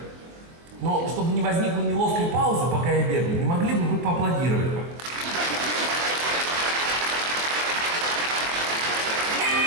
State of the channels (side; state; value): left; late; 23 ms